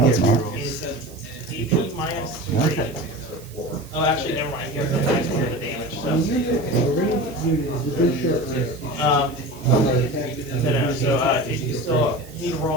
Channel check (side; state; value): right; noise; hiss, 22 dB below the sound